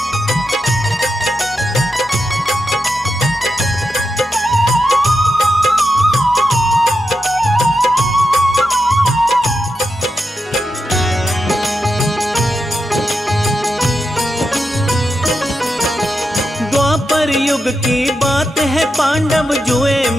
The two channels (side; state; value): both; normal; correlation 0.87